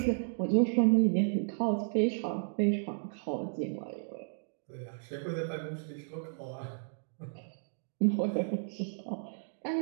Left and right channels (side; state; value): left; silent; digital silence